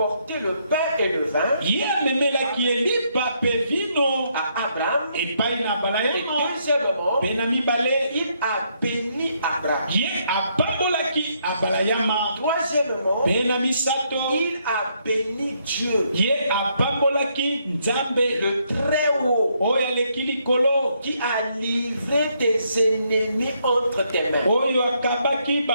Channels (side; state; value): both; inverted; correlation -0.73